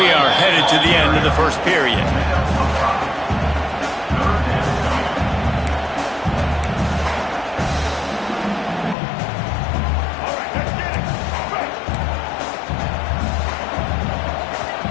are headed to the end of the first period.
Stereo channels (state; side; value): drops out; right; at 9.0 s